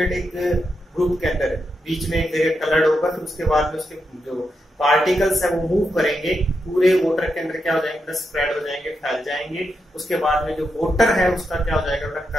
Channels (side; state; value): both; normal; correlation 0.85